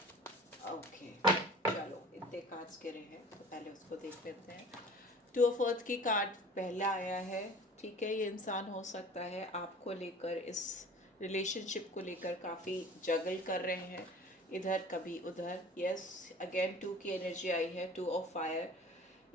ओके, चलो इतने कार्ड्स गिरे हैं तो पहले उसको देख लेते हैं। टू ऑफ अर्थ की कार्ड पहला आया है। ठीक है, ये इंसान हो सकता है आपको लेकर, इस रिलेशनशिप को लेकर काफ़ी जगल कर रहे हैं, इधर कभी उधर। यस, अगेन टू की एनर्जी आई है, टू ऑफ फायर।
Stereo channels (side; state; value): both; normal; correlation 0.43